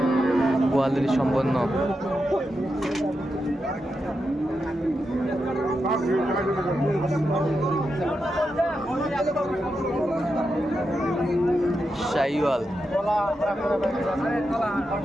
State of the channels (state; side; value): normal; both; correlation 0.87